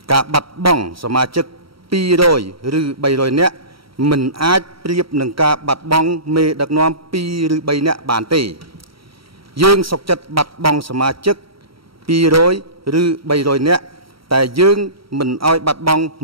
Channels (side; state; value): left; late; 0.75 ms